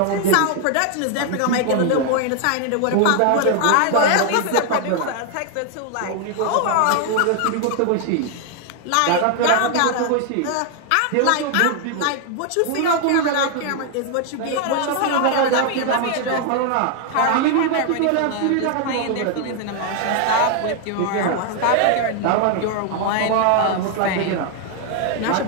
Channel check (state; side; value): different; both; correlation 0.00